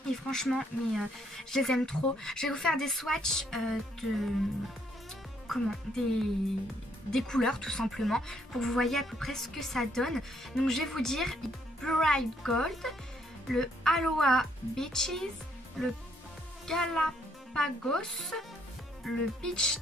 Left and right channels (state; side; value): normal; both; correlation 0.70